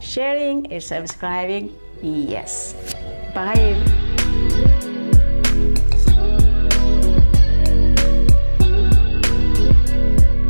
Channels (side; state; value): both; inverted; correlation -1.00